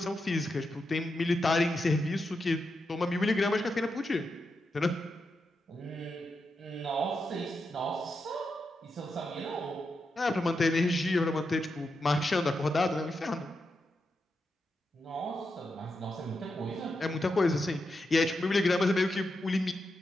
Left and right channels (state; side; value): normal; both; correlation 0.86